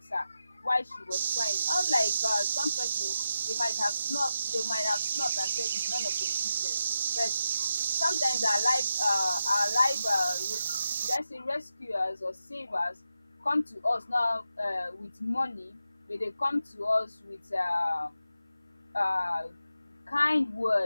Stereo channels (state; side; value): inverted; both; correlation -0.88